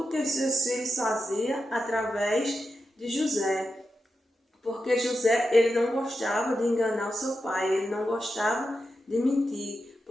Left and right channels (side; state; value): both; normal; correlation 0.88